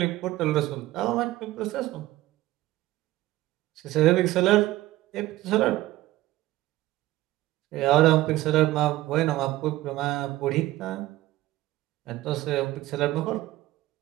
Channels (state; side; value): quieter; left; 16.8 dB